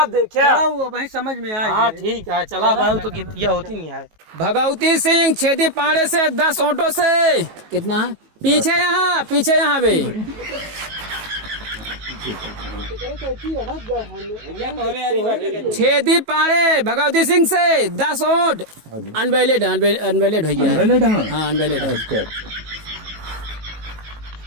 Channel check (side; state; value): left; late; 19 ms